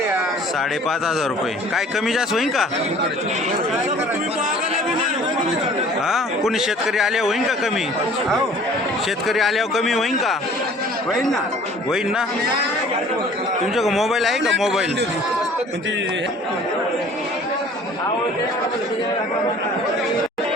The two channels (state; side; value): normal; both; correlation 0.50